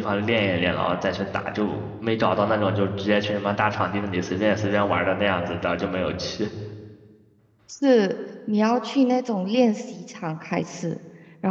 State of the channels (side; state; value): both; identical; correlation 1.00